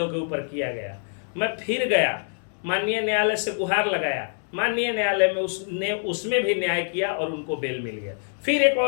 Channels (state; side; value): silent; right; 62 dB below the other